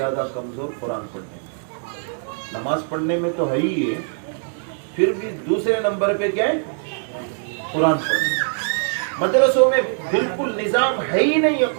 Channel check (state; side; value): silent; left; 64 dB below the other